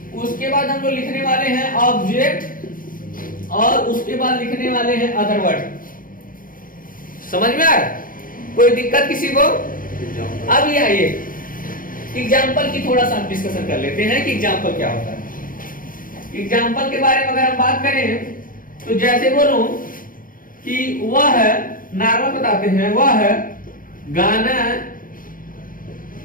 उसके बाद हम लोग लिखने वाले हैं ऑब्जेक्ट, और उसके बाद लिखने वाले हैं अदर वर्ड। समझ में आ रहा है? कोई दिक्कत किसी को? अब ये आइए एग्जाम्पल की थोड़ा सा डिस्कशन कर लेते हैं कि एग्जाम्पल क्या होता है। एग्जाम्पल के बारे में अगर हम बात करें तो जैसे बोलूं कि वह है, नॉर्मल बताते हैं, वह है गाना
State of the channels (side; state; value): right; late; 0.40 ms